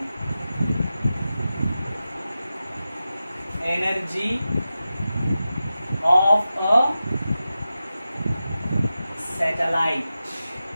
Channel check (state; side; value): inverted; both; correlation -0.93